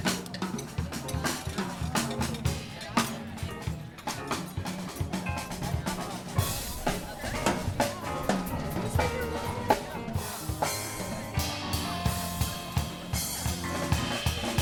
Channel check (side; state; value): both; identical; correlation 1.00